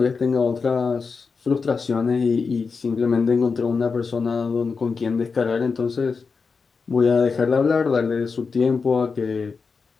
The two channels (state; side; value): quieter; right; 5.0 dB